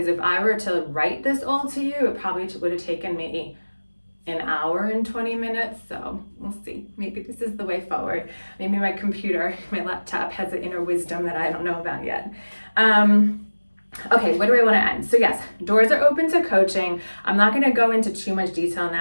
if I were to write this all to you, it probably would have taken me an hour and 20 minutes. So we'll see. Maybe this is the way forward. Maybe my computer, my laptop has an inner wisdom that I don't know about yet. Okay, what do I want to end? So yes, doors are open to coaching. I'm not going to go into too much detail on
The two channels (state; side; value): inverted; both; correlation -1.00